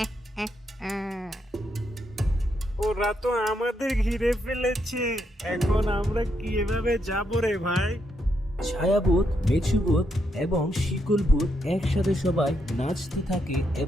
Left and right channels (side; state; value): both; normal; correlation 0.79